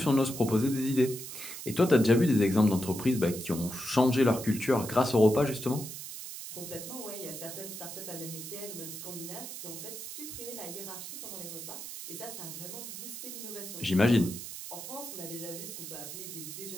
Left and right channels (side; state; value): right; noise; hiss, 9 dB below the sound